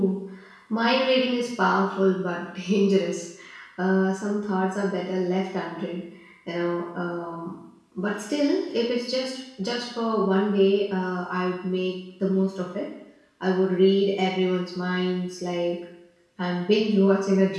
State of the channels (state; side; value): identical; both; correlation 1.00